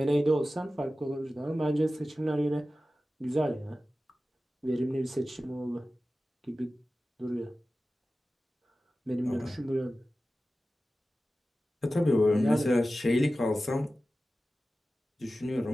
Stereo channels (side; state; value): both; normal; correlation 0.95